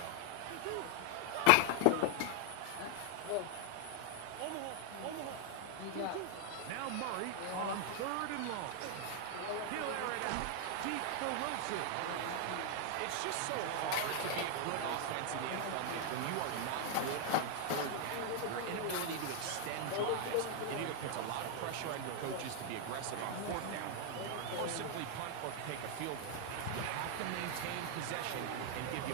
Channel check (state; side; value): different; both; correlation 0.00